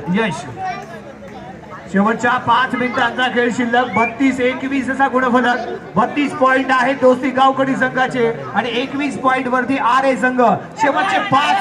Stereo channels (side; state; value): both; identical; correlation 1.00